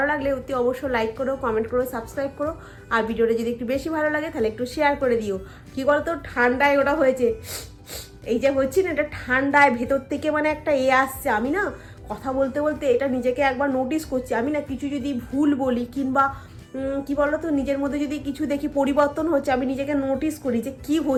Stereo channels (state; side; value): identical; both; correlation 1.00